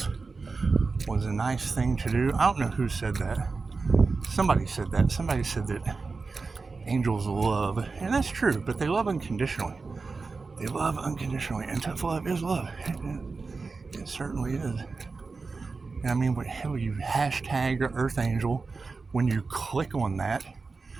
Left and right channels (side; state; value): left; quieter; 4.2 dB